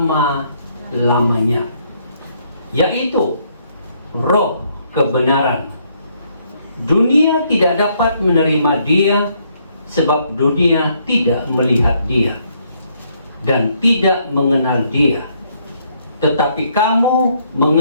yaitu Roh kebenaran. Dunia tidak dapat menerima Dia, sebab dunia tidak melihat Dia dan tidak mengenal Dia. Tetapi kamu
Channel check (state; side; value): inverted; both; correlation -0.70